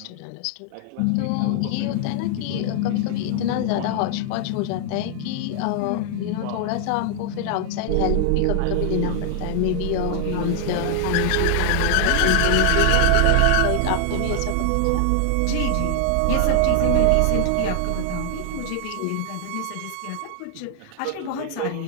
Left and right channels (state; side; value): different; both; correlation 0.00